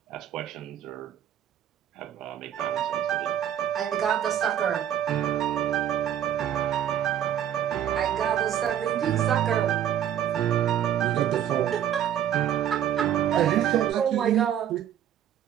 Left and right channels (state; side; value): quieter; left; 10.2 dB